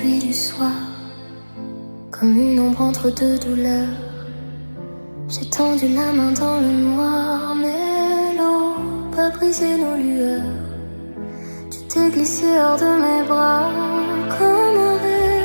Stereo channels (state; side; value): inverted; both; correlation -1.00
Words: du soir, comme une ombre entre deux douleurs. J'ai tendu la main dans le noir, mais l'eau pas brisé nos lueurs. Tu t'es glissé hors de mes bras, comme un